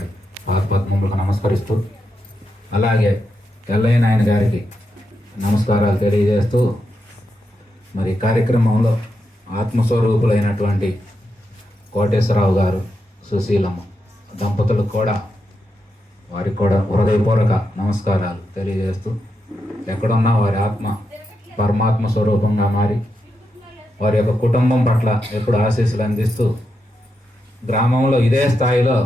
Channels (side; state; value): both; normal; correlation 0.85